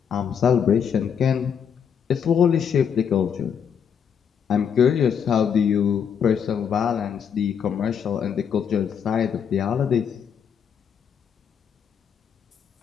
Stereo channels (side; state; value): right; quieter; 7.6 dB